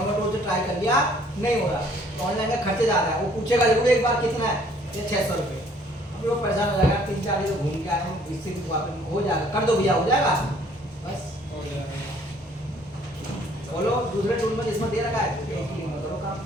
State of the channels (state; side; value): normal; both; correlation 0.60